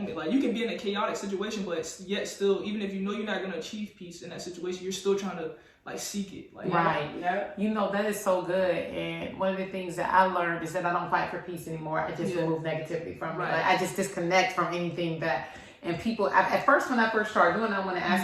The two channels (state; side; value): identical; both; correlation 1.00